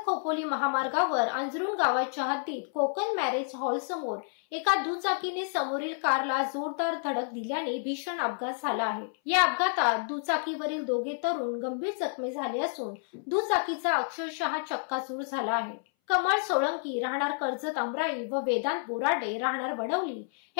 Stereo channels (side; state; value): right; silent; 58 dB below the other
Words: खोपोली महामार्गावर अंजरुण गावाच्या हद्दीत कोकण मॅरेज हॉल समोर एका दुचाकीने समोरील कारला जोरदार धडक दिल्याने भीषण अपघात झाला आहे। या अपघातात दुचाकीवरील दोघे तरुण गंभीर जखमी झाले असून दुचाकीचा अक्षरशः चक्काचूर झाला आहे। कमळ सोळंकी राहणार कर्जत अमराई व वेदांत बोराडे राहणार वडवली